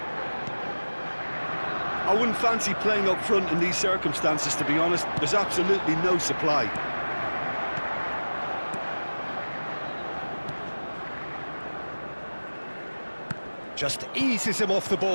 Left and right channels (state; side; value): inverted; both; correlation -1.00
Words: I wouldn't fancy playing up front in these circumstances, to be honest. There's absolutely no supply. Just eases him off the